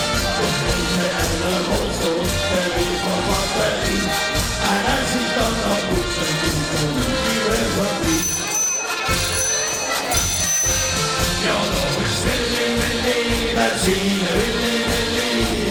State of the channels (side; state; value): both; identical; correlation 1.00